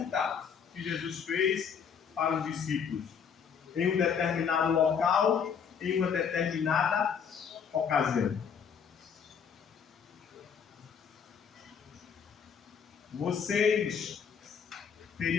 que Jesus fez para os discípulos em um determinado local, em uma determinada ocasião. Vocês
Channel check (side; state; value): right; quieter; 7.0 dB